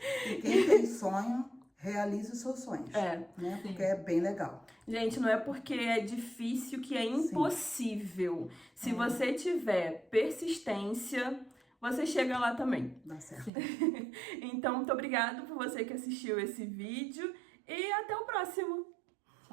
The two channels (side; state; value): left; drops out; at 13.5 s